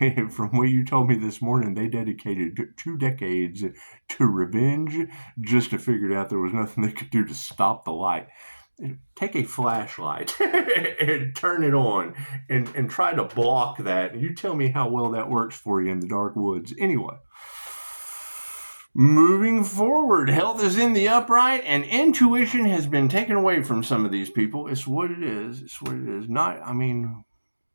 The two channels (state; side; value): inverted; both; correlation -1.00